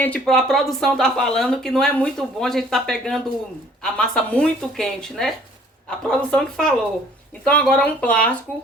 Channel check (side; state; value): both; normal; correlation 0.56